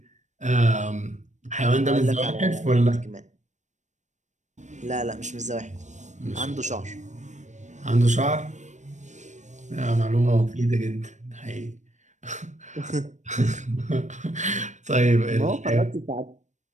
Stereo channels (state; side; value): late; left; 0.35 ms